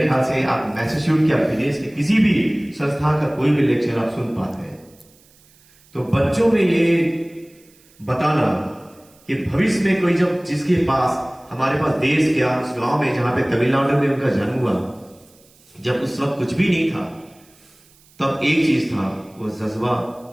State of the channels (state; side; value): noise; right; hiss, 29 dB below the sound